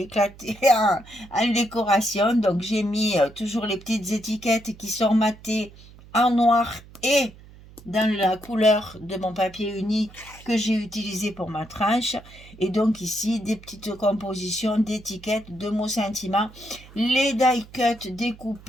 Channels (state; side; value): noise; right; hum, 21 dB below the sound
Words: en décoration. Donc j'ai mis toujours les petites étiquettes qui sont matées en noir et dans la couleur de mon papier uni que j'ai utilisé pour ma tranche. Et donc ici, des petites compositions d'étiquettes, de mots sentiments. Les die cuts